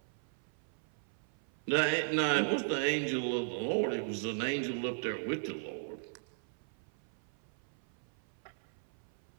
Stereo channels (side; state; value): left; silent; 53 dB below the other